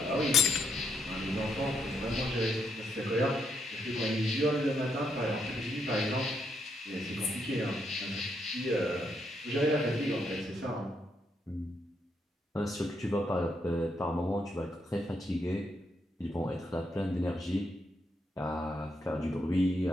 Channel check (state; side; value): normal; both; correlation 0.78